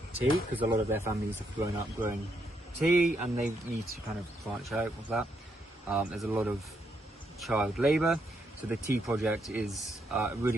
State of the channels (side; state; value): both; normal; correlation 0.77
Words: tea, because a lot of their families have grown up growing tea and they need to kind of branch out of that. There's a lot of child labour, so the Tea Project is a really